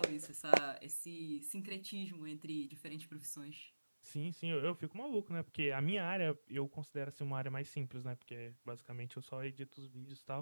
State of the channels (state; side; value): inverted; both; correlation -1.00